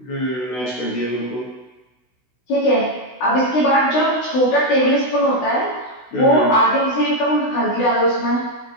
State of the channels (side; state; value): right; late; 16 ms